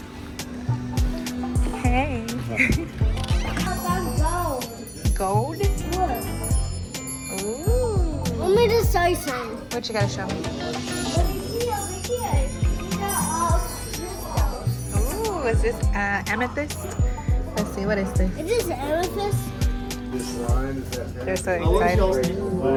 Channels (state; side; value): identical; both; correlation 1.00